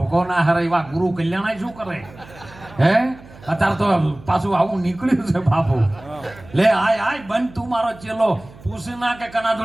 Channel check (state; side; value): noise; right; hum, 21 dB below the sound